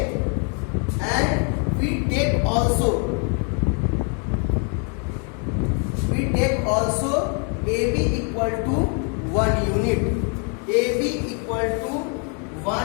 and we take also AB equal to 1 unit. AB equal to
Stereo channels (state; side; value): quieter; right; 39.6 dB